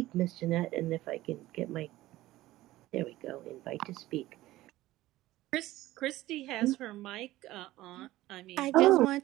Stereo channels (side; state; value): left; quieter; 16.5 dB